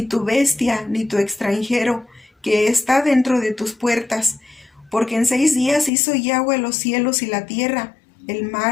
tu bestia, ni tu extranjero, que está dentro de tus puertas. Porque en 6 días hizo Yahweh los cielos y la tierra, el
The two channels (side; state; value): right; drops out; at 5.9 s